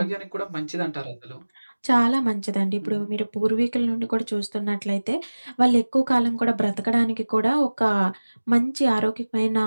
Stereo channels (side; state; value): both; inverted; correlation -1.00